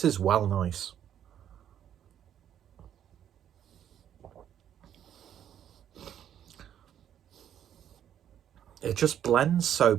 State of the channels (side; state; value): left; quieter; 9.9 dB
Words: is well nice. It just blends so